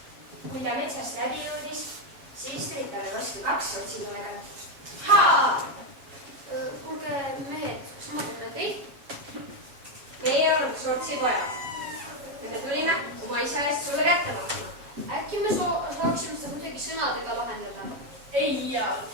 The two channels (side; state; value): left; late; 7.1 ms